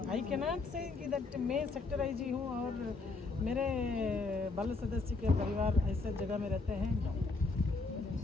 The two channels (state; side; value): quieter; right; 3.9 dB